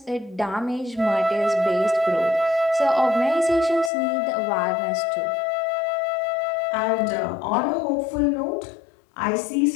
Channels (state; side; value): drops out; right; at 3.9 s